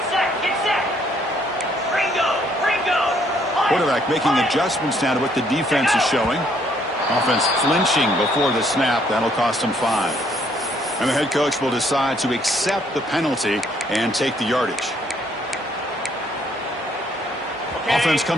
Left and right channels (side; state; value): both; normal; correlation 0.67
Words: Quarterback making adjustments now to what the defense is showing. Offense flinching before the snap. That'll cost him 5. And the head coach will decide to accept the penalty and take the yardage. Offense